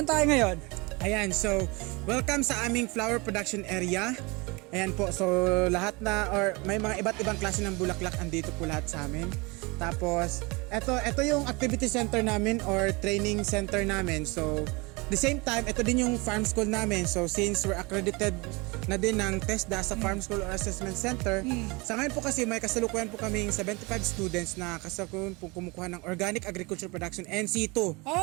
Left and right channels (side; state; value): left; quieter; 26.4 dB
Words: tayo ngayon? Ayan, so welcome sa aming flower production area. Ayan po, so lahat may mga iba't ibang klase ng bulaklak andito po lahat sa amin. Tapos, ito yung activity center namin or training center namin. So, the same time, ito din yung farm school namin. So, since we're accredited na din ng TESDA sa Farm School or Assessment Center, sa ngayon po kasi may kasalukuyan po kaming 75 students na kasalukuyan po kumukuha ng Organic Agriculture Production NC2.